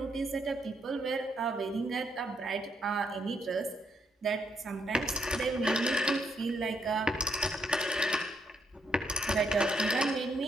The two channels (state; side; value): normal; both; correlation 0.75